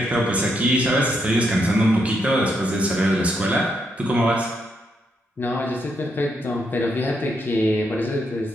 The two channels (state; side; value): normal; both; correlation 0.79